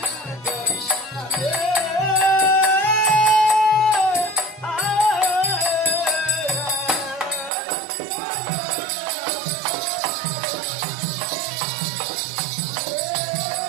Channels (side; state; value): left; drops out; at 7.5 s